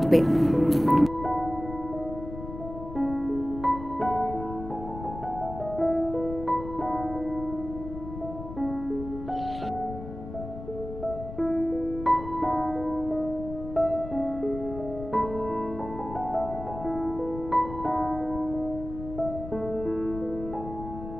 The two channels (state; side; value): noise; left; rumble, 10 dB below the sound